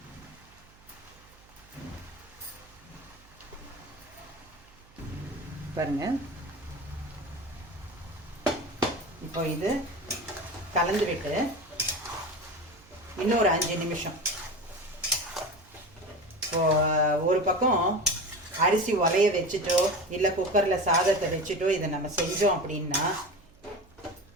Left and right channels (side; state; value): right; noise; hum, 27 dB below the sound